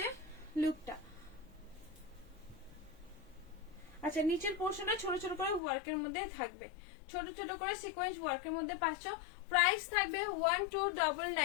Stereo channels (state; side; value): drops out; right; at 5.6 s